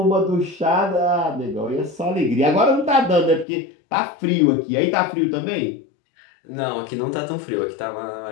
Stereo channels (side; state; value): right; drops out; at 3.5 s